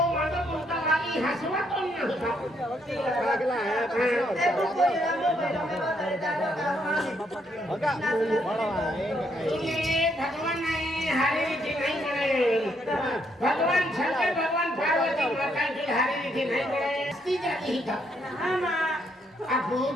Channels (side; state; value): both; normal; correlation 0.74